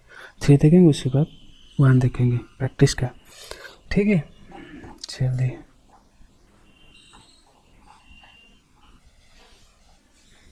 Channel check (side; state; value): both; identical; correlation 1.00